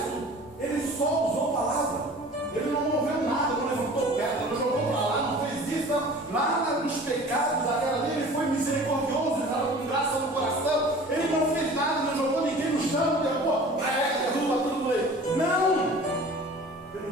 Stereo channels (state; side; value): normal; both; correlation 0.43